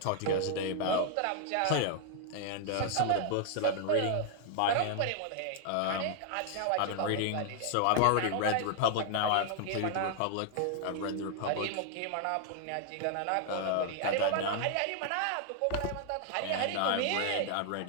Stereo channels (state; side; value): different; both; correlation 0.00